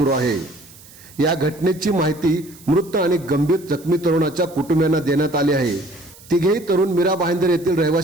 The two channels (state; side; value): noise; right; hiss, 22 dB below the sound